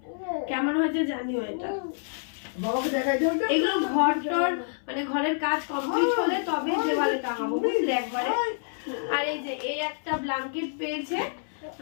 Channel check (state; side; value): silent; right; 60 dB below the other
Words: কেমন হয়েছে জানিও এটা। বাবাকে দেখাই দাও। এগুলো ঘর টর মানে ঘরের কাজ কমপ্লিট হলে তবে দেওয়ালে টাঙাবো, বুঝলে, একবারে। আর এই যে এই একটা ব্ল্যাঙ্কেট পেয়েছে,